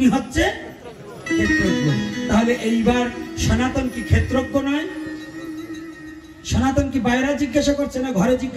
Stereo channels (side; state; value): both; identical; correlation 1.00